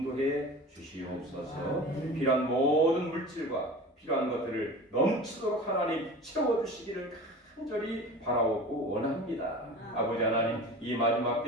주시옵소서. 필요한 모든 물질과 필요한 것들을 넘치도록 하나님 채워주시기를 간절히 바라오고 원합니다. 아버지 하나님 이 마지막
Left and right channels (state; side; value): normal; both; correlation 0.36